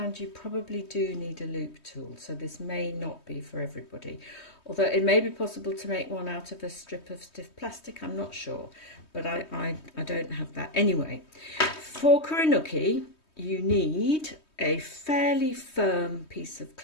you probably do need a loop tool, so this may not be for everybody. Although it may be possible to make one out of a strip of stiff plastic, I'm not sure, but I don't have that. Anyway, for Kurinuki, you need a fairly firm piece of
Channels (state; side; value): late; right; 3.2 ms